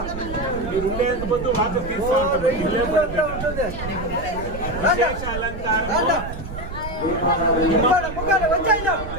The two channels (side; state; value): right; noise; rumble, 9 dB below the sound